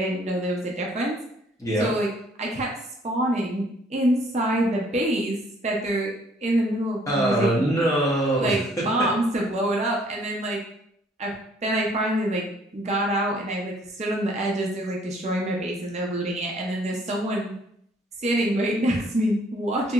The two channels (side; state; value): both; normal; correlation 0.61